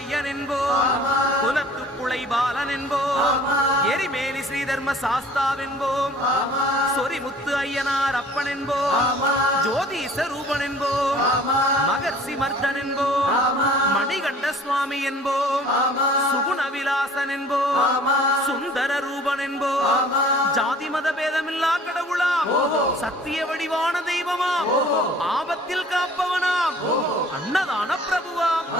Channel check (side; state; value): both; normal; correlation 0.50